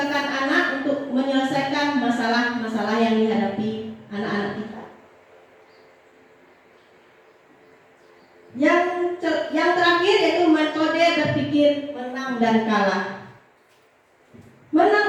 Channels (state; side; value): identical; both; correlation 1.00